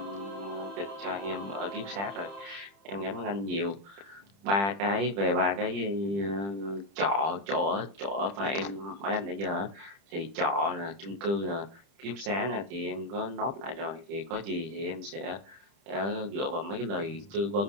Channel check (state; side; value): late; left; 30 ms